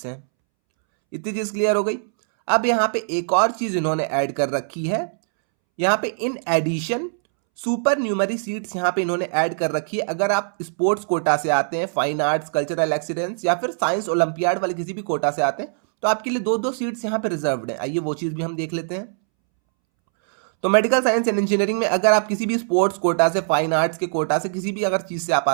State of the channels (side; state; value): left; silent; 64 dB below the other